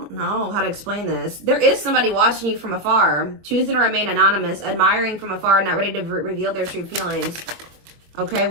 know how to explain this. There is somebody watching you from afar, choosing to remain anonymous, admiring from afar, not ready to reveal their true feelings. Okay,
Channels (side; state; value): left; late; 24 ms